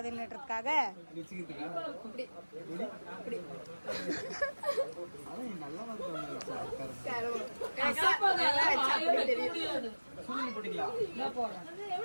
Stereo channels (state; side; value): inverted; both; correlation -1.00